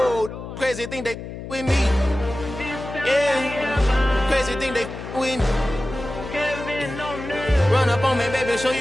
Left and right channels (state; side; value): noise; left; hum, 10 dB below the sound